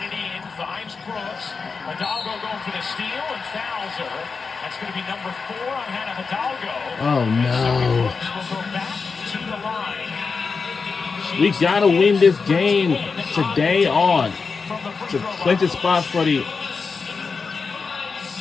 it in, finds Brooks. Hidalgo going for the steal and fouls her. That's going to be number 4 on Hannah Hidalgo. Oh, no. Brooks will go back to the line. We got to win this game today on to clinch the spot for the 75%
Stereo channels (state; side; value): quieter; right; 4.9 dB